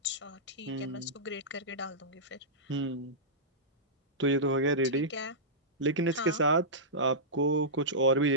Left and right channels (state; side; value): normal; both; correlation -0.15